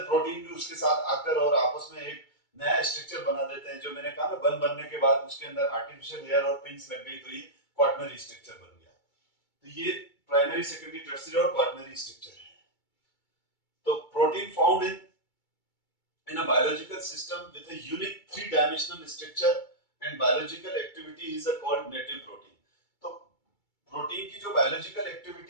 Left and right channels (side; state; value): right; late; 2.3 ms